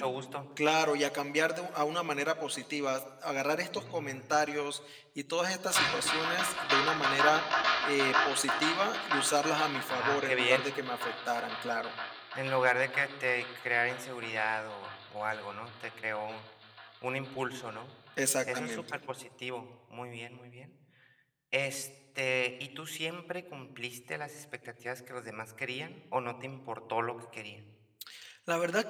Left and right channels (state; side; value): identical; both; correlation 1.00